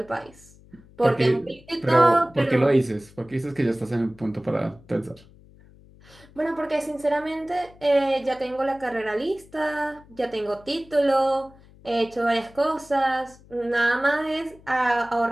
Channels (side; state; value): left; noise; hum, 25 dB below the sound